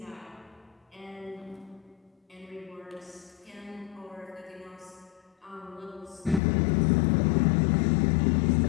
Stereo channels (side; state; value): right; drops out; at 6.4 s